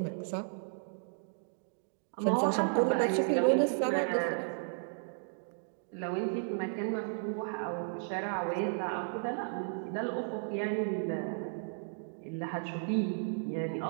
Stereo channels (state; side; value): silent; left; digital silence